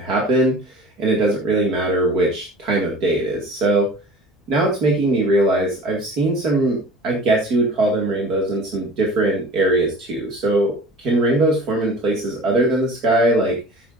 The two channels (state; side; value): normal; both; correlation 0.41